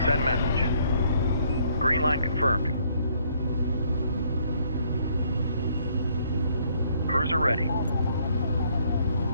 Send message. Green line confirmed. Cruiser ready.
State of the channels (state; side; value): inverted; both; correlation -0.67